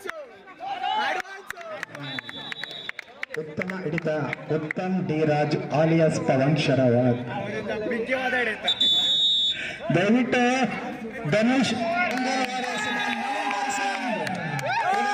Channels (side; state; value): both; identical; correlation 1.00